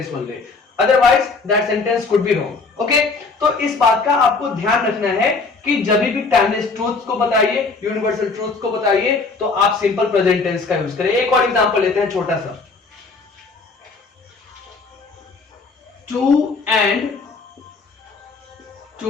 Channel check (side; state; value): right; quieter; 4.2 dB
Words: only, otherwise that sentence could be wrong. Okay, तो इस बात का आपको ध्यान रखना है कि जब भी टाइमलेस ट्रूथ्स को बताइए, यूनिवर्सल ट्रूथ्स को बताइए तो आप सिंपल प्रेजेंट टेंस का यूज करें। एक और एग्जांपल लेते हैं छोटा सा, 2 and